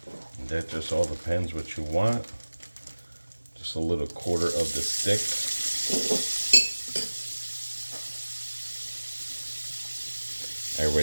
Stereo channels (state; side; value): inverted; both; correlation -1.00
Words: That just all depends what you want. Just a little quarter of the stick. I